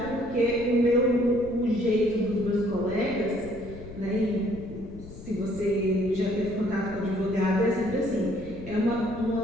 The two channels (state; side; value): noise; left; rumble, 14 dB below the sound